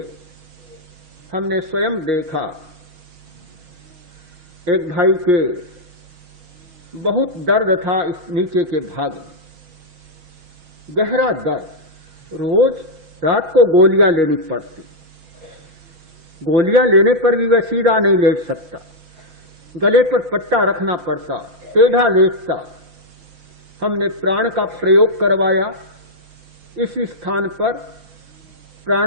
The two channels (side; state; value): left; late; 6.3 ms